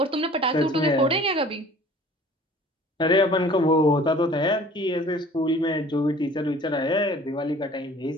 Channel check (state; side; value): normal; both; correlation 0.48